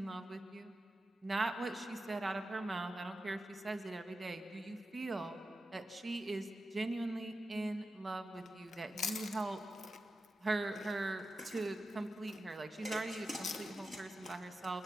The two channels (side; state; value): both; normal; correlation 0.91